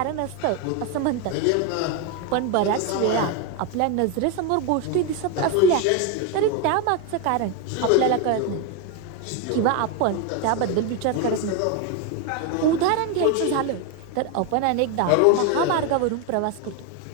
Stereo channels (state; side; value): different; both; correlation 0.02